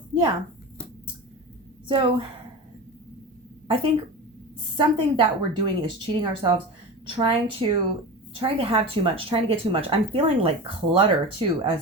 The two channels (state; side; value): normal; both; correlation 0.29